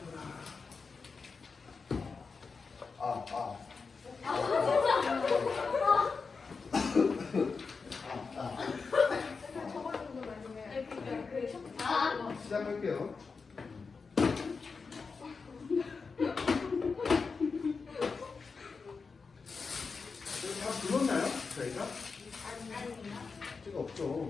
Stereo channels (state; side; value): quieter; right; 4.8 dB